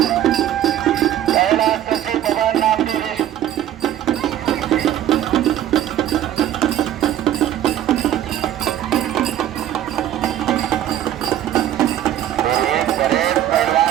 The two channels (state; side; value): quieter; left; 11.8 dB